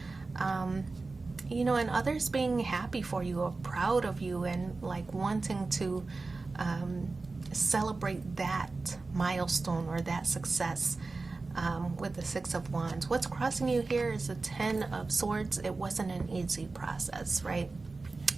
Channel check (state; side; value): quieter; left; 3.7 dB